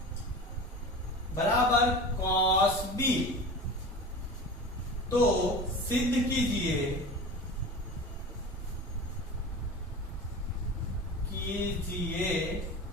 बराबर कॉस बी, तो सिद्ध कीजिए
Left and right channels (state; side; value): normal; both; correlation 0.33